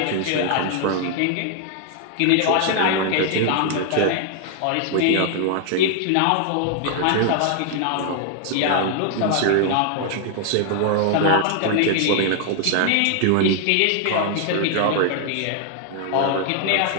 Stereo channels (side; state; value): both; different; correlation 0.00